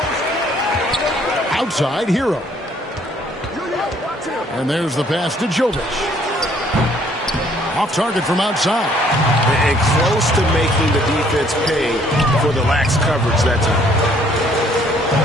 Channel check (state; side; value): normal; both; correlation 0.62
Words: Outside, Hero. And there's the pass to Jovic. Off target from outside. And close to making the defense pay for the lax coverage that time.